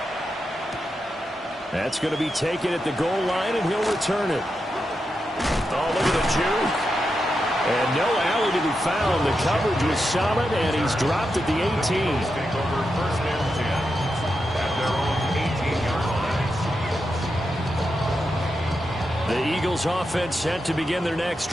That's going to be taken at the goal line, and he'll return it. Oh, look at the juke. And no alley to be found. The coverage was solid, and he's dropped at the 18. The Eagles offense set to begin their next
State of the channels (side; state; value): both; normal; correlation 0.87